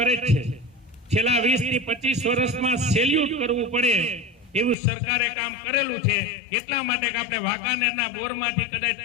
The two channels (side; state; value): right; drops out; at 4.8 s